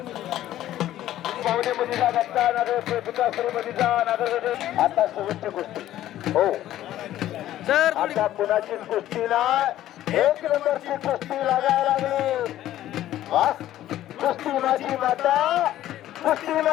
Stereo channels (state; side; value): quieter; right; 13.2 dB